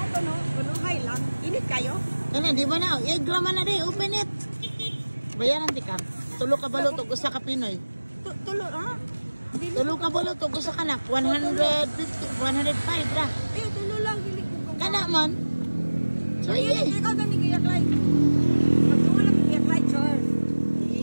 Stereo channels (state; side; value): inverted; both; correlation -1.00